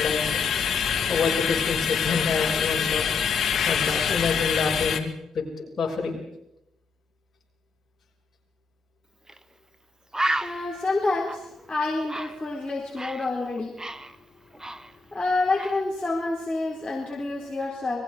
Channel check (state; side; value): quieter; right; 4.4 dB